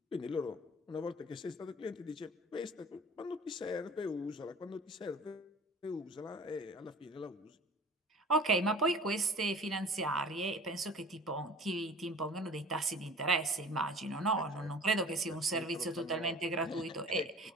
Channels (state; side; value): normal; both; correlation 0.43